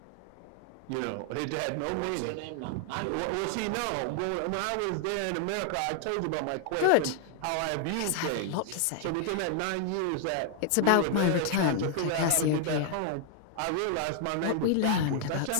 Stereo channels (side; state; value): both; different; correlation 0.00